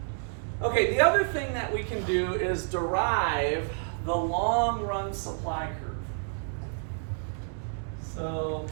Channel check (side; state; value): left; silent; 58 dB below the other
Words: Okay, the other thing that we can do is derive the long run supply curve. So